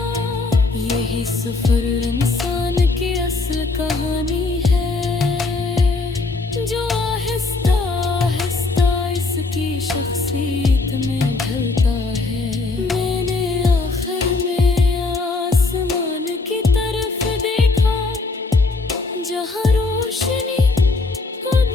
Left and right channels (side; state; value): right; quieter; 3.6 dB